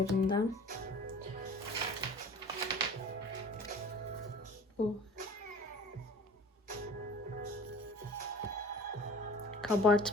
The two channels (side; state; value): both; normal; correlation 0.44